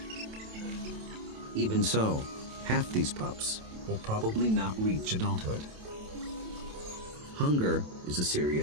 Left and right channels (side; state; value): left; late; 27 ms